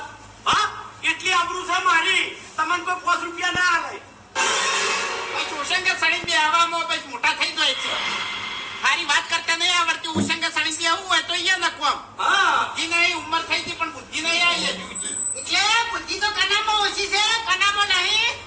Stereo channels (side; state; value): both; identical; correlation 1.00